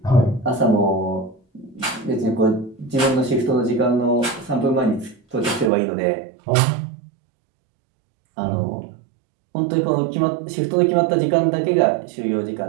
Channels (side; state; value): left; drops out; at 5.7 s